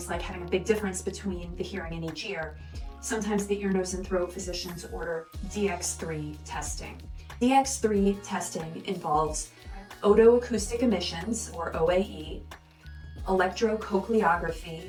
like having a big difference between the hearing in each ear, sometimes the ear, nose, and throat physicians order DX3 testing. DX3 testing involves otoacoustic emissions, or OAE, electrocochleography,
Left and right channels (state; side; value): identical; both; correlation 1.00